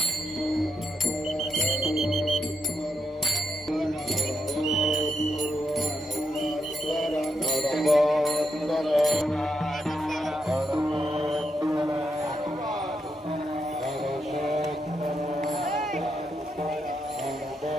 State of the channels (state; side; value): normal; both; correlation 0.81